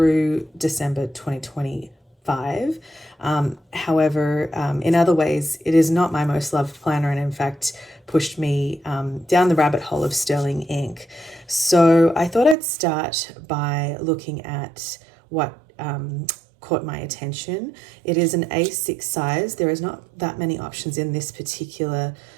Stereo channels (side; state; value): left; drops out; at 12.6 s